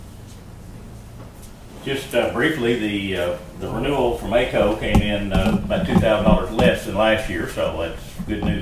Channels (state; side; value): identical; both; correlation 1.00